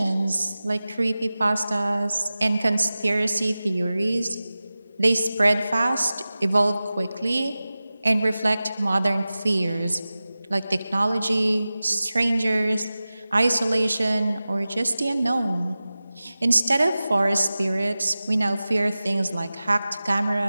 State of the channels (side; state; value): both; inverted; correlation -0.96